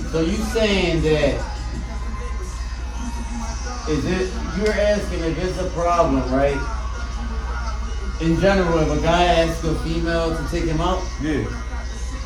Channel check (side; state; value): both; identical; correlation 1.00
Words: So you saying that is it? You're asking if it's a problem, right? In general, if a guy asks a female to take him out, bro? Yeah.